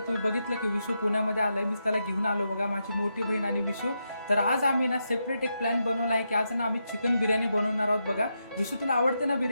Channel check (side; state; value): both; inverted; correlation -0.84